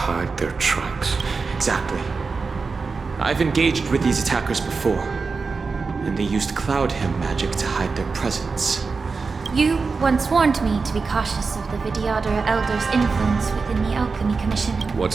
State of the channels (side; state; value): left; quieter; 4.5 dB